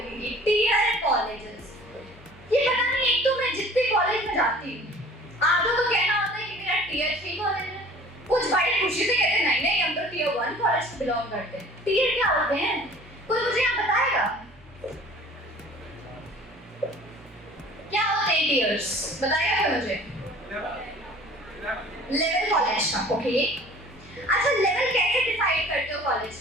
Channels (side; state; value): both; normal; correlation 0.48